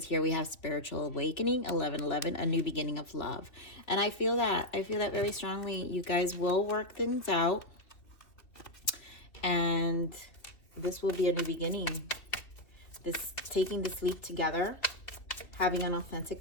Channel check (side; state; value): right; late; 2.8 ms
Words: here we have spiritual awakening, 1111, a new beginning of love. And I feel that. I feel that very strongly. You guys will work things out. And this will be a new beginning. This taking this leap together, having an authentic